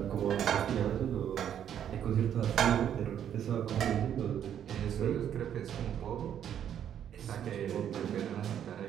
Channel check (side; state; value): left; quieter; 9.6 dB